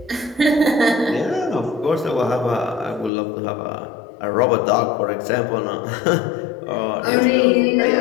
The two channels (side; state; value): right; drops out; at 3.1 s